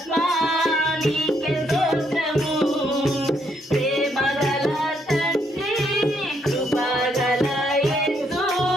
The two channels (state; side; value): normal; both; correlation 0.73